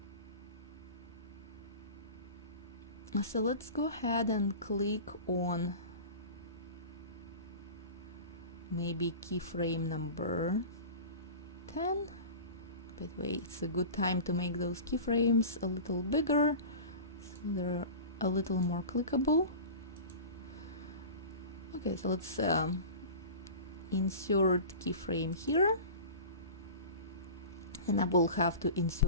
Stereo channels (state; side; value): inverted; both; correlation -0.34